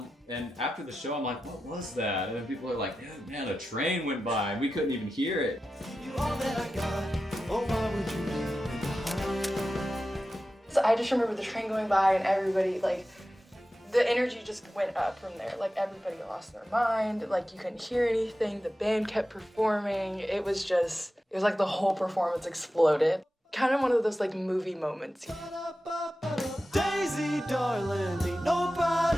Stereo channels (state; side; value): normal; both; correlation 0.93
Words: And after the show, I'm like, what was that? And then people are like, man, a train went by and we couldn't even hear it. You all that I got. Oh, why would you leave me behind? So I just remember the train going by and everybody like the energy just went up from there. Like everybody lost their mind. Like you couldn't hear anything. The band kept performing. It was like the whole performance exploded. Kind of one of those like movie moments. Daisy, darling, ain't